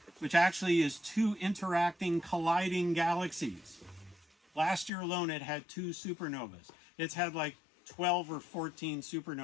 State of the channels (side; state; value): right; drops out; at 4.9 s